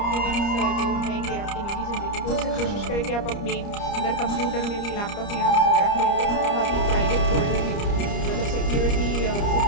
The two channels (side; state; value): right; late; 30 ms